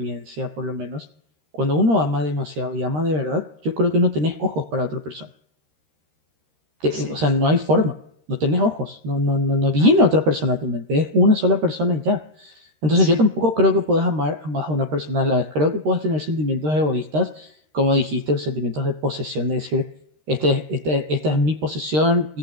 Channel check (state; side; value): late; left; 13 ms